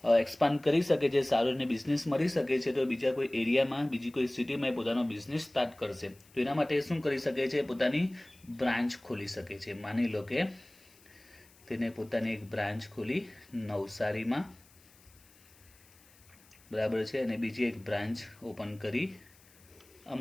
એક્સપાન્ડ કરી શકે છે, સારો એને બિઝનેસ મળી શકે છે, તો બીજા કોઈ એરિયામાં બીજી કોઈ સિટીમાં પોતાનો બિઝનેસ સ્ટાર્ટ કરશે. તો એના માટે શું કરી શકે છે? પોતાની બ્રાન્ચ ખોલી શકે છે. માની લો કે તેને પોતાની એક બ્રાન્ચ ખોલી નવસારીમાં, બરાબર છે, અને બીજી એક બ્રાન્ચ ઓપન કરી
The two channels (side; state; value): left; noise; hiss, 27 dB below the sound